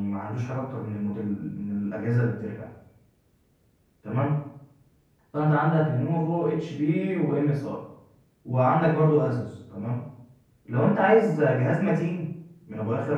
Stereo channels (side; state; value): both; identical; correlation 1.00